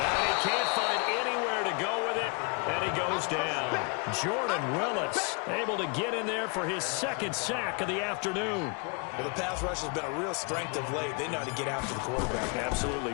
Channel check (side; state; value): right; quieter; 34.6 dB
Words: he can't find anywhere to go with it, and he goes down. Jordan Willis able to get in there for his 2nd sack of the afternoon. Well, the pass rush has been a real strength of late. They know how to get after the quarterback. Absolutely.